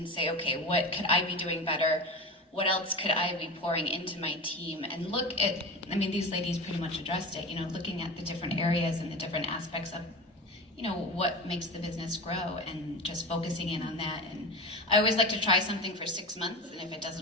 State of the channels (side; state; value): both; normal; correlation 0.27